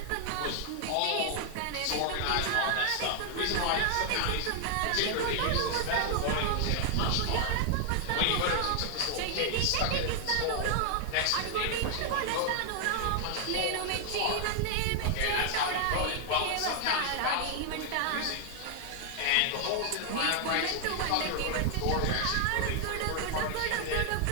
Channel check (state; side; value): different; both; correlation 0.00